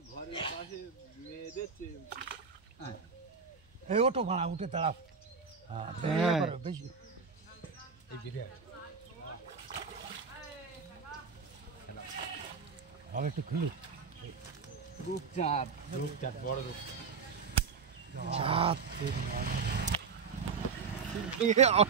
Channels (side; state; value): left; quieter; 5.7 dB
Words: ঘরের পাশে মেয়ে দেখছে এই ওটো ভাড়া উঠে তাড়া বেশি এই বিরিয়া আর একটু খুলি রূপচাঁদ বড়